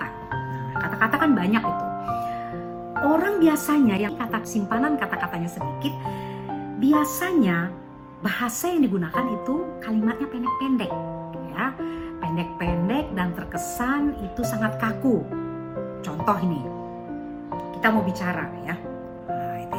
Kata-kata kan banyak itu. Orang biasanya yang simpanan kata-katanya sedikit, biasanya bahasa yang digunakan itu kalimatnya pendek-pendek, ya. Pendek-pendek dan terkesan itu sangat kaku. Contoh ini, kita mau bicara, ya.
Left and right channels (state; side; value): identical; both; correlation 1.00